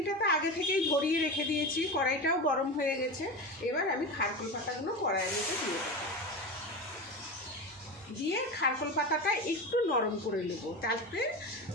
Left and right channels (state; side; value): normal; both; correlation 0.24